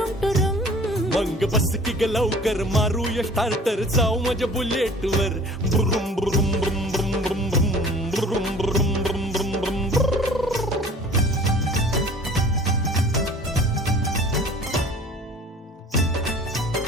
टुरुम मंग बस की ग लवकर मारूया स्टार्टर जाऊ माझ्या बुलेट वर ब्रुम ब्रुम ब्रुम ब्रुम ब्रुम ब्रुम ब्रुम ब्रुम ब्रुम ब्रुम ब्रुम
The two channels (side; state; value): both; normal; correlation 0.47